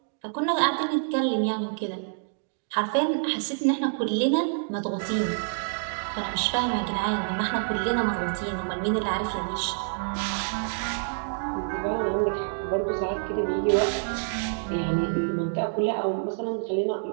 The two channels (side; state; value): left; silent; digital silence